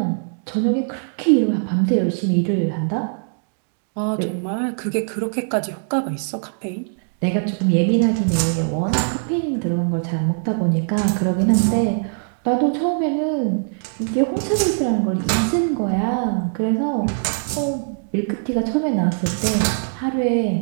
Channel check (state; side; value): silent; left; digital silence